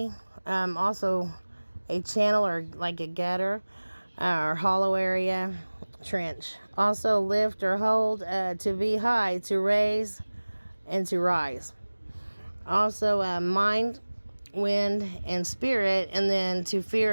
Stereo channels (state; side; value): inverted; both; correlation -1.00